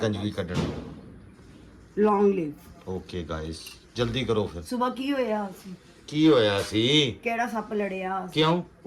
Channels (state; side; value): identical; both; correlation 1.00